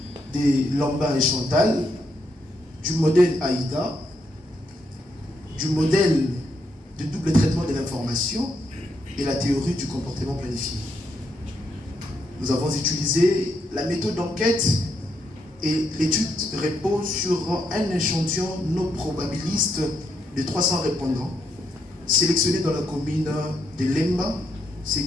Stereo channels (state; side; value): normal; both; correlation 0.78